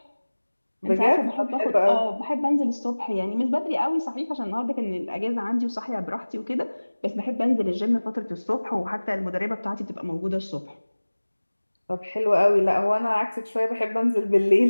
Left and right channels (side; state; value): both; inverted; correlation -1.00